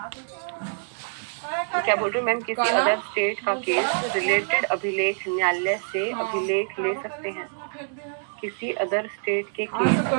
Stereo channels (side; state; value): left; silent; 61 dB below the other